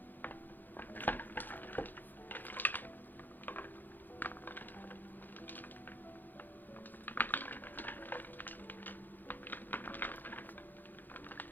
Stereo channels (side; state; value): right; late; 0.087 ms